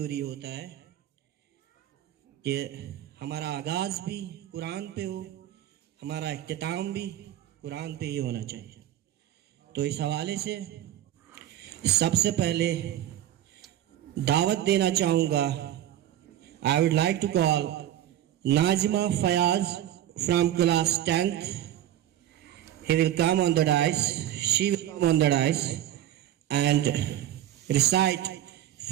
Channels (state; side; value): quieter; left; 12.2 dB